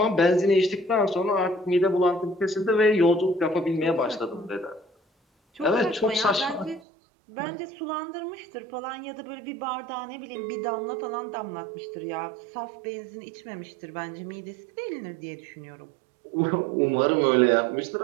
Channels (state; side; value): drops out; left; at 6.8 s